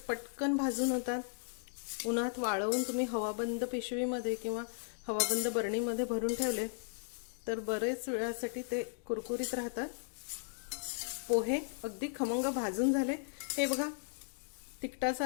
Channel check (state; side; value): silent; right; digital silence